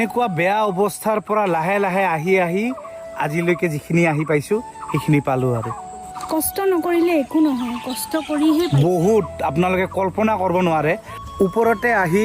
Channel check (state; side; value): identical; both; correlation 1.00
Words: বেয়া অৱস্থাৰ পৰা লাহে লাহে আহি আহি আজিলৈকে যিখিনি আহি পাইছোঁ সেইখিনি পালোঁ আৰু কষ্ট নকৰিলে একো নহয় কষ্ট কৰিহে বহুত আপোনালোকে কল্পনা কৰিব নোৱাৰে ওপৰতে আহি